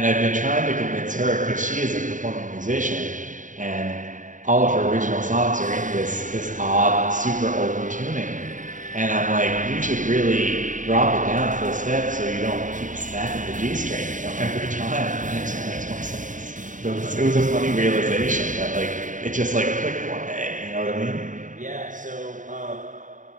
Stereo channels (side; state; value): left; late; 0.37 ms